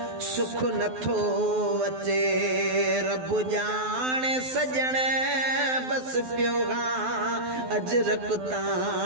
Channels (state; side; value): late; left; 12 ms